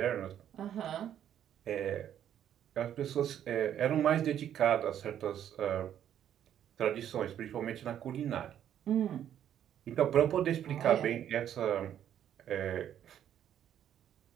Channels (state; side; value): quieter; left; 10.2 dB